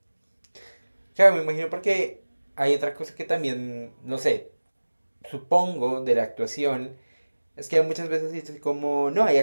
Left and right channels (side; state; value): both; inverted; correlation -1.00